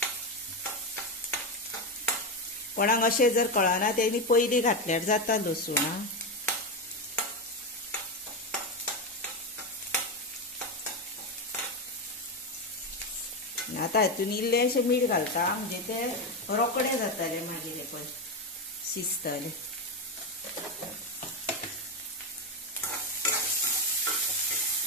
कोणाक अशें जर कळना तेणी पयलीं घातल्यार जाता लसूण। आतां हितून इल्लेशें मीठ घालता, म्हणजे ते रोकडे जातले मागीर हे पळय शिजतले।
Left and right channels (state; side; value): normal; both; correlation 0.11